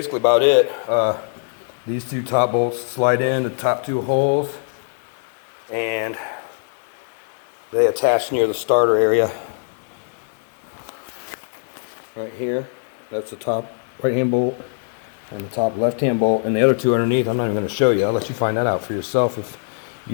about it. These two top bolts slide in the top two holes, and they attach near the starter area right here. That's the top right hand bolt and the top left hand bolt, and the other two underneath I'm not even going to show you. I'll let you find that out for yourself if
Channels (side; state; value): right; silent; 64 dB below the other